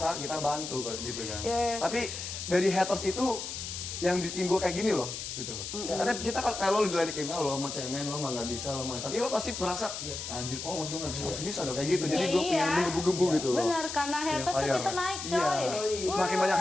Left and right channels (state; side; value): noise; left; hiss, 7 dB below the sound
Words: kita bantu gitu kan. Yeah. Tapi dari haters itu yang bikin gue kayak gini loh, gitu loh. Karena kita kalau lo diledekin, lo mau cemen, lo mah nggak bisa, lo mah. Tapi lo pasti merasa, anjir, mas gue nggak bisa, harus bisa dong kayak gitu. Jadi gue pengen menggebu-gebu gitu loh. Bener, karena haters tuh kita naik coy. Iya. Semakin banyak